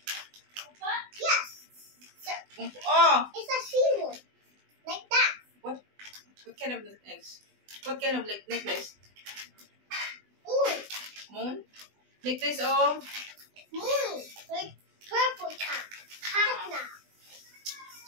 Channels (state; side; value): late; left; 20 ms